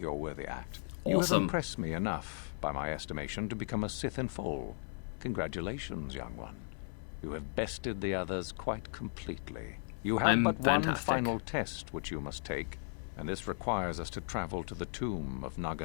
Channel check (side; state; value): right; silent; 54 dB below the other